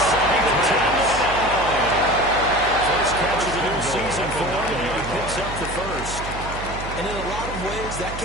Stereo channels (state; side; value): noise; right; hum, 9 dB below the sound